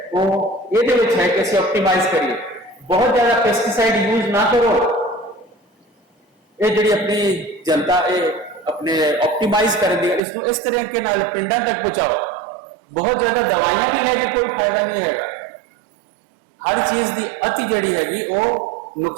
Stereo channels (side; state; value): left; drops out; at 10.2 s